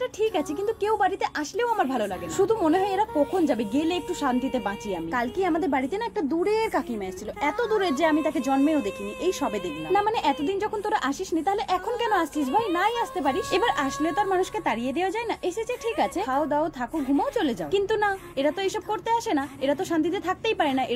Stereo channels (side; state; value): both; identical; correlation 1.00